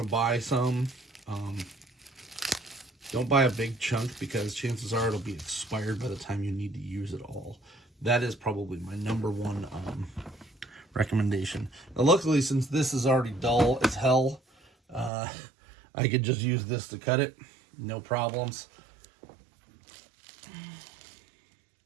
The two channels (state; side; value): drops out; left; at 15.1 s